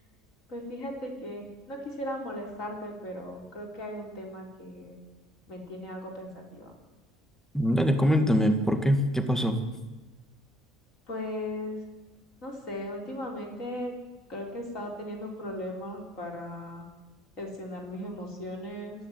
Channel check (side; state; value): both; normal; correlation 0.67